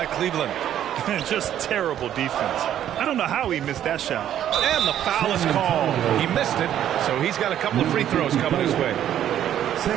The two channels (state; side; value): quieter; left; 10.9 dB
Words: Cleveland. Just terrible defense. I don't know how he missed that shot. And the foul is called. He missed it, so he's got a couple of free throws coming his way.